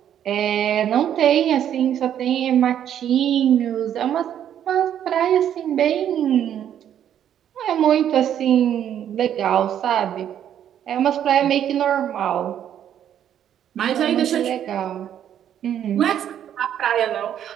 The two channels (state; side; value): quieter; left; 10.0 dB